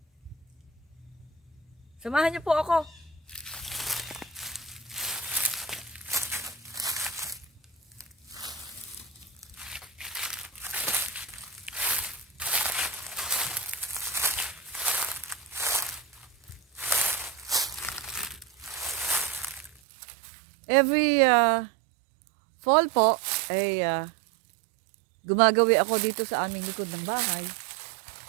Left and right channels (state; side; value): drops out; left; at 19.7 s